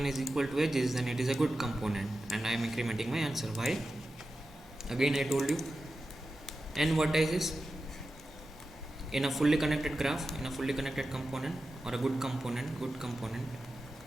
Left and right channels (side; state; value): both; normal; correlation 0.92